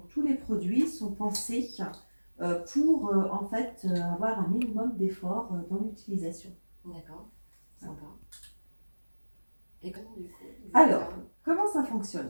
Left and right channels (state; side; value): inverted; both; correlation -1.00